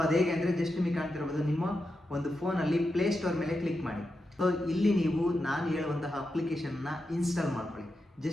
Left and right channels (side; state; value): both; normal; correlation 0.88